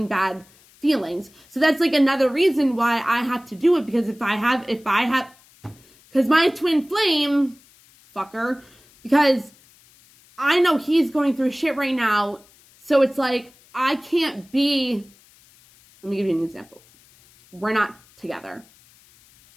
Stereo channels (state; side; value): noise; left; hiss, 28 dB below the sound